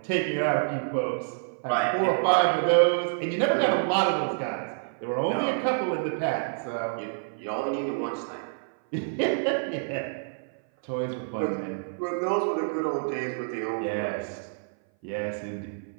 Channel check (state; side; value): silent; left; 57 dB below the other